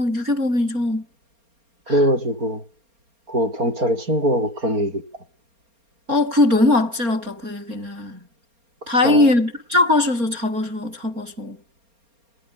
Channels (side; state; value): left; late; 4.3 ms